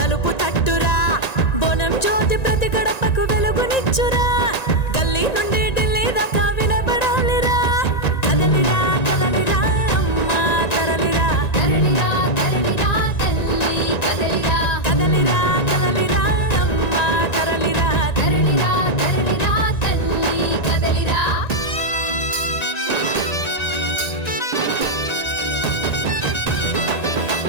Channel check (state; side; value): late; right; 1.9 ms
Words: తలుపు తట్టురా బోనం జ్యోతి ప్రతి గడపకు వెలుగునిచ్చురా గల్లీ నుండి ఢిల్లీ దాకా వినబడాలిరా కదలిరా కదలిరా అమ్మా తరలిరా తరలిరా తరలిరా తల్లి కదలిరా కదలిరా కదలిరా అమ్మా తరలిరా తరలిరా తరలిరా తల్లి కదలిరా